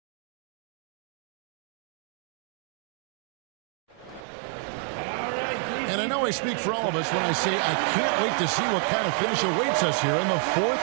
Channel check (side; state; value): left; drops out; at 4.2 s